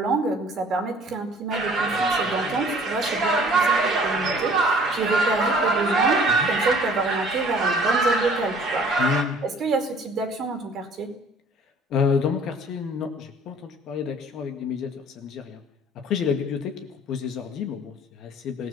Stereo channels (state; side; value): normal; both; correlation 0.53